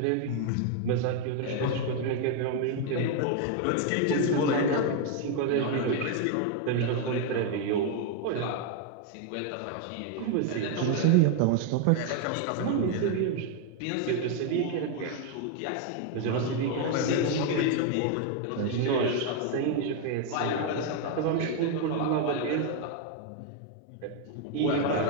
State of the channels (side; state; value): both; different; correlation 0.01